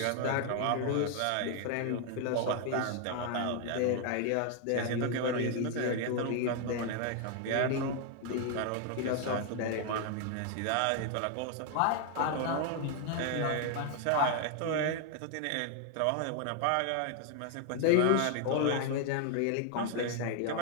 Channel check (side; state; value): both; different; correlation 0.00